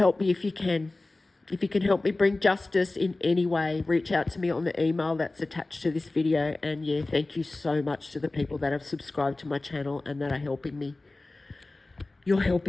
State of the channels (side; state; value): right; quieter; 3.1 dB